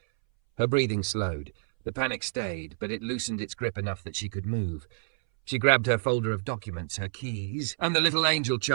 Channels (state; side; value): silent; left; 59 dB below the other